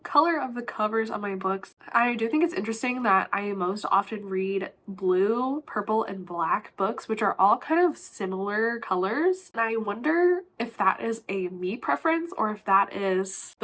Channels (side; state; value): both; identical; correlation 1.00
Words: color of the covers on my books. I do think it's interesting that I most often read blue, purple, and black books, which are all kind of similar colors. And I wonder if that is a me preference or if that is